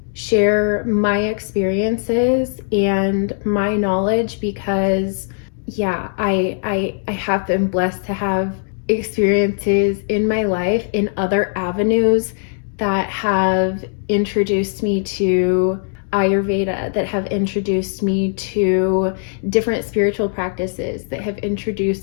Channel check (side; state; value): right; silent; digital silence